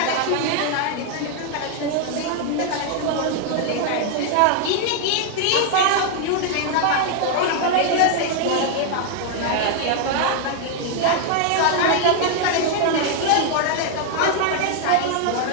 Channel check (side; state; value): both; different; correlation 0.00